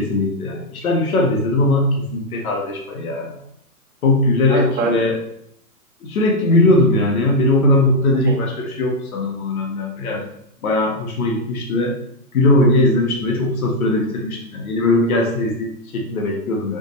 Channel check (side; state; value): both; normal; correlation 0.01